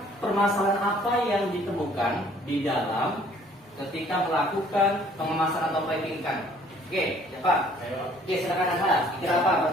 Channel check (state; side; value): normal; both; correlation 0.58